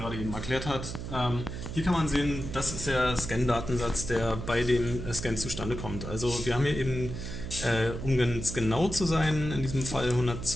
eben erklärt hat. Hier kann man sehen, das ist der Scan-Datensatz, der bei dem Scan zustande kommt. Also wir haben hier eben, um ganz genau zu sein, in diesem Fall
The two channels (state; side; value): noise; right; hum, 7 dB below the sound